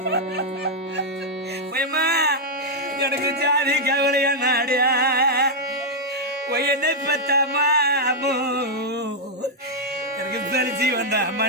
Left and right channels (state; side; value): normal; both; correlation -0.03